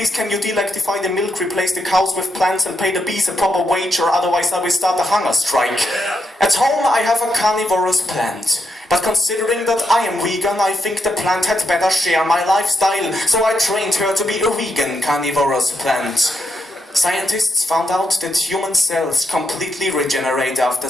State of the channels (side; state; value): both; normal; correlation 0.81